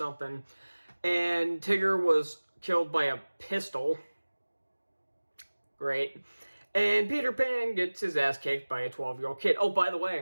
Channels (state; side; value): inverted; both; correlation -1.00